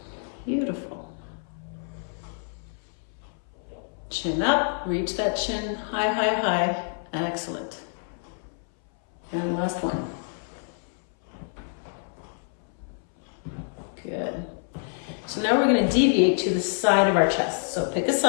Beautiful. Chin up, reach that chin, high. Excellent. And last one. Good. So now we're going to deviate to the side of our chest. So pick a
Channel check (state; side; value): silent; right; 60 dB below the other